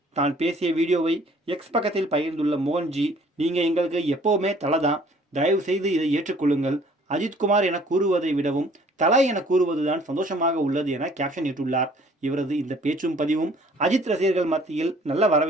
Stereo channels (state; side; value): normal; both; correlation 0.56